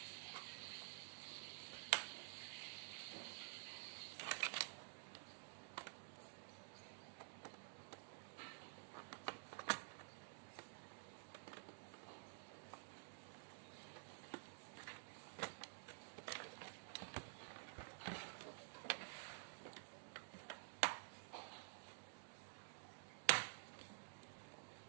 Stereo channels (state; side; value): silent; left; digital silence